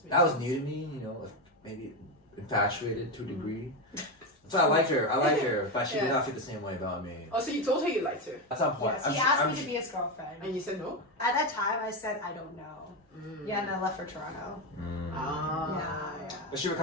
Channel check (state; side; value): normal; both; correlation 0.12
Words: that was new to me, you know, maybe infatuated to a degree. So I liked her, but she did not feel the same way about me. Oh, so you told her you liked her? At some point. Yes, he asked me to be his girlfriend. And you said no? At that time, I said, I don't know. Yeah, and I left for Toronto. Yeah. But she would